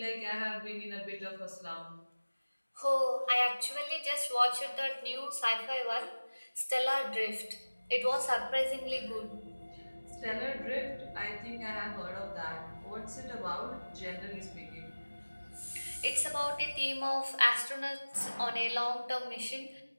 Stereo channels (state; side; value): inverted; both; correlation -1.00